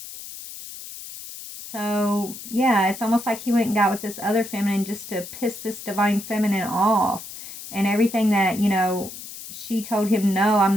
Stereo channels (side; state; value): left; noise; hiss, 12 dB below the sound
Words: So, yeah, it's almost like he went and got with this other feminine just to piss this divine feminine off. And everything that, she told him, no, I'm